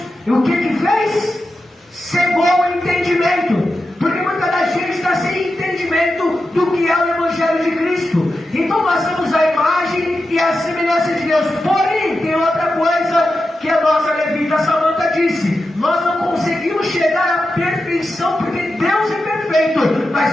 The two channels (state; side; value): normal; both; correlation 0.90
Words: Então nós temos a imagem e a semelhança de Deus. Porém, tem outra coisa que a nossa levita Samanta disse: nós não conseguimos chegar à perfeição porque Deus é perfeito,